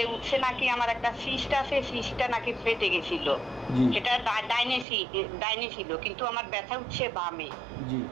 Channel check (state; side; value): drops out; left; at 4.9 s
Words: উঠছে নাকি আমার একটা সিস্ট আছে, সিস্টটা নাকি ফেটে গেছিল, সেটা ডাইনে ছিল, কিন্তু আমার ব্যথা উঠছে বামে,